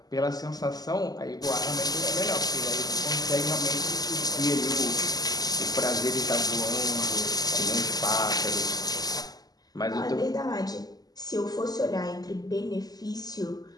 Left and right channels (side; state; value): right; late; 0.18 ms